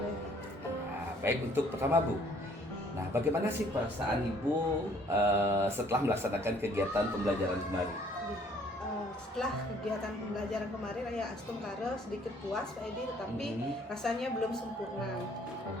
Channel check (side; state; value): both; normal; correlation 0.60